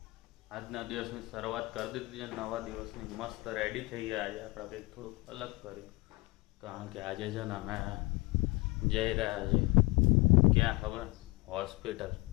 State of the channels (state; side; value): quieter; right; 23.8 dB